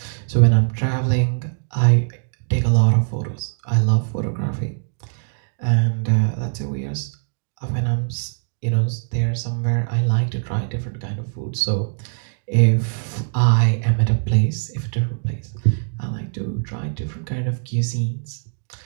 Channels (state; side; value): silent; left; digital silence